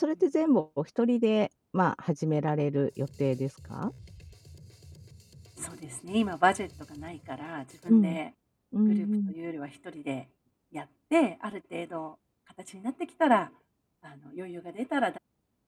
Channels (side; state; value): both; identical; correlation 1.00